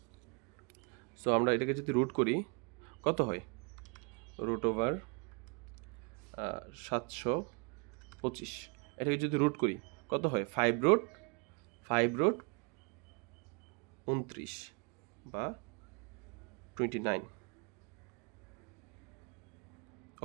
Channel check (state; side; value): quieter; left; 34.4 dB